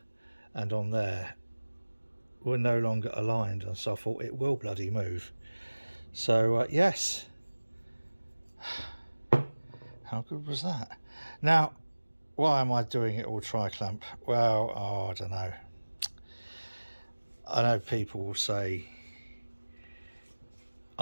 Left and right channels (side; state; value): both; inverted; correlation -1.00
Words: and on there were no longer aligned, and so I thought it will bloody move. So yes, how good was that? Now, why am I doing it all tri-clamp? Well, I don't know. I know people will say